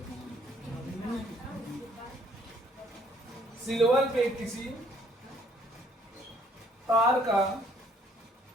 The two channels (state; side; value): normal; both; correlation 0.63